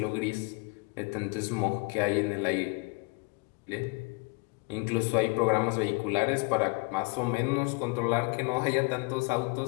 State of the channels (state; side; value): quieter; right; 30.0 dB